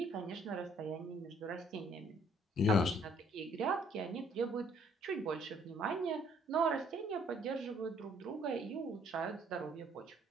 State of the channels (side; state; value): both; normal; correlation 0.63